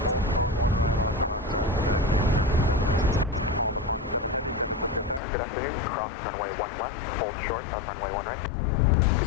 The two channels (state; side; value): drops out; right; at 5.2 s